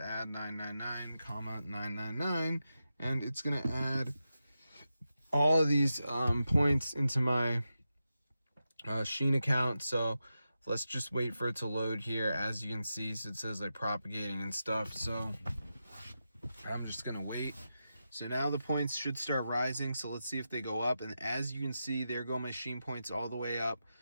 999, 999, and it's going to add all of these points into my SHEIN account. So let's just wait for it to load here. As you can see, so it says like propagating and stuff. So I'm just going to wait. So now the points should start rising. So let's see if they go up. And as you can see, there go my SHEIN points all the way up.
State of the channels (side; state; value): both; inverted; correlation -0.89